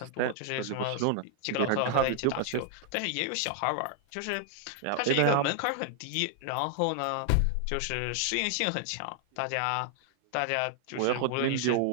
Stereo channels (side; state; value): both; different; correlation 0.00